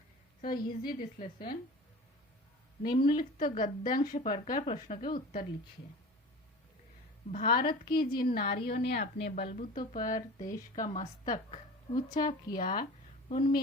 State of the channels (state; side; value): normal; both; correlation 0.36